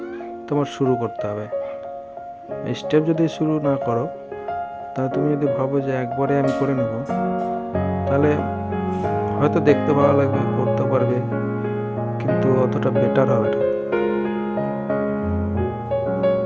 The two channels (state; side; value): identical; both; correlation 1.00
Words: তোমার শুরু করতে হবে। স্টেপ যদি শুরু না করো, তাহলে তুমি যদি ভাবো যে একবারে আমি করে নেব, তাহলে হয়তো দেখতে ভালো লাগবে, করতে পারবে, কিন্তু অতটা বেটার হবে না।